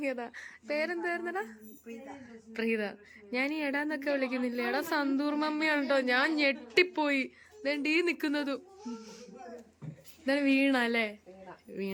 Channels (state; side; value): identical; both; correlation 1.00